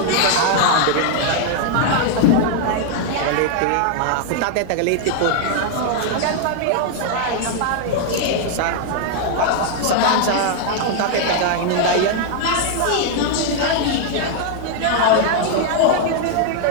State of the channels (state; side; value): different; both; correlation 0.00